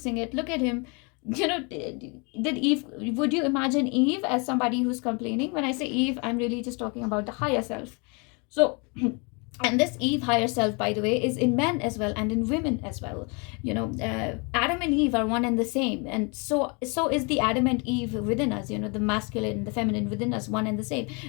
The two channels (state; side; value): quieter; right; 32.0 dB